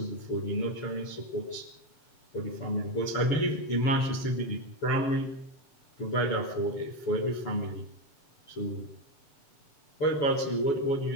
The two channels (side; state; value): right; late; 7.0 ms